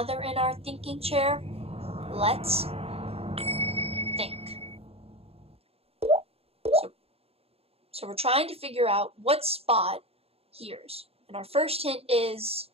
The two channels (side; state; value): left; late; 0.29 ms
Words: they're in our thinking chair. Let's think. So we're trying to figure out what Spot hears. And our first hint is